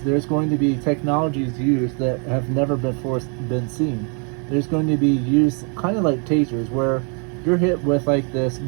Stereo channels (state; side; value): quieter; left; 38.2 dB